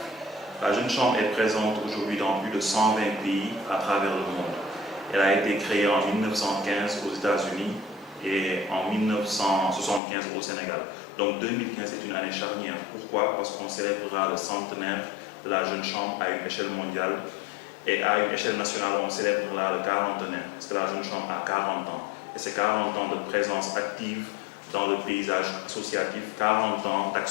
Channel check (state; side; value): drops out; right; at 10.0 s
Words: La Jeune Chambre est présente aujourd'hui dans plus de 120 pays à travers le monde. Elle a été créée en 1915 aux États-Unis et en 1975 au Sénégal. Donc 2015 est une année charnière. Pourquoi? Parce qu'on célébrera le centenaire de la Jeune Chambre à une échelle mondiale et à une échelle nationale on célébrera le 40aire parce que la Jeune Chambre a 40 ans. Et c'est 40 ans de présence active dans le paysage associatif, 40 ans